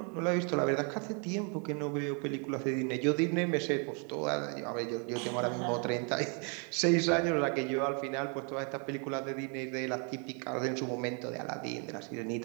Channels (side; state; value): left; quieter; 37.6 dB